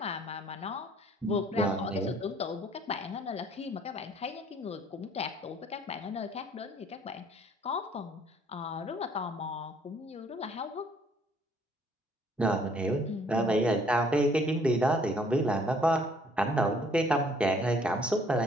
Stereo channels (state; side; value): normal; both; correlation 0.61